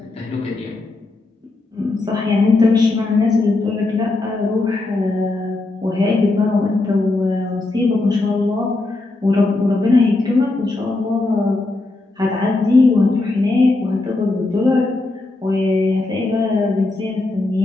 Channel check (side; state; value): right; quieter; 3.1 dB